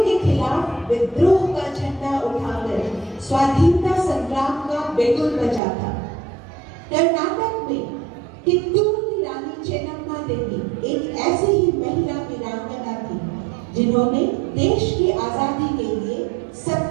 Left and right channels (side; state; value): left; drops out; at 5.6 s